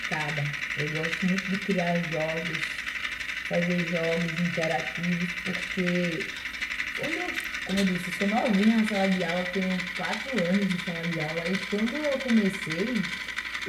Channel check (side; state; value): both; identical; correlation 1.00